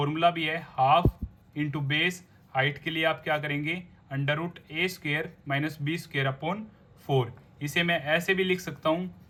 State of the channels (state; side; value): identical; both; correlation 1.00